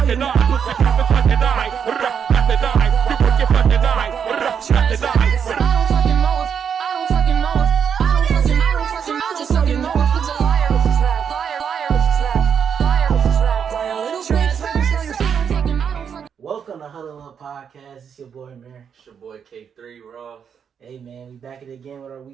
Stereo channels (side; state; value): left; quieter; 7.4 dB